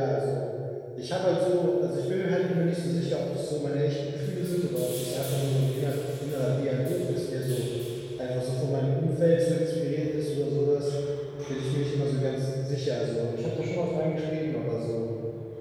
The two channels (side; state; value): both; identical; correlation 1.00